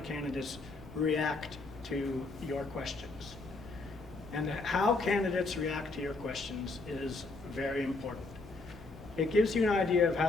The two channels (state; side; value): quieter; right; 3.5 dB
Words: candidates react to your questions. And how candidates react to your questions is very important. It gives you an idea of